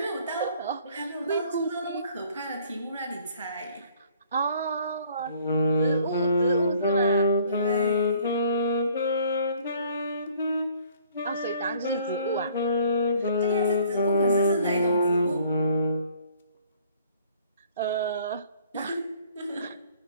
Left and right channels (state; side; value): inverted; both; correlation -0.58